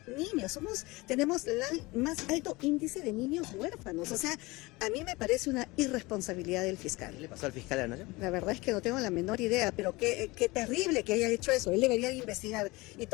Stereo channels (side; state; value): right; quieter; 22.7 dB